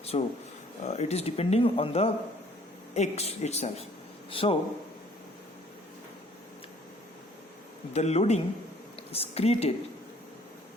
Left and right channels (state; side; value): normal; both; correlation 0.58